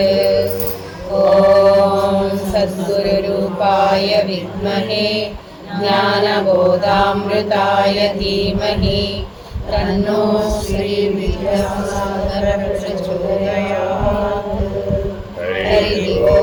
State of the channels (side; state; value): both; identical; correlation 1.00